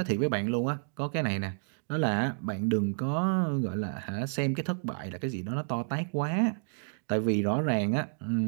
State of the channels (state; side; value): silent; left; digital silence